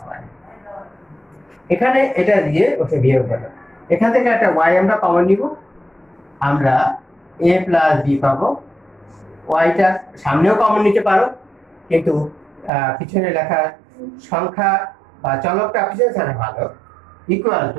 এখানে এটা দিয়ে ওকে বিয়োগ করো। এখান থেকে একটা y আমরা কমন নিব, আমরা a + b পাবো। yটা সামনেও কমন নিতে পারো, কিন্তু পিছনে লেখা সংখ্যা বা চলকটা পিছনে থাকা ভালো। ইকুয়াল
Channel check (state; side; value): drops out; left; at 12.7 s